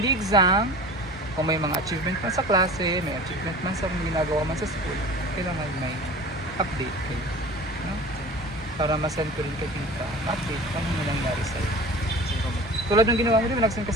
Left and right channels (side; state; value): both; normal; correlation 0.39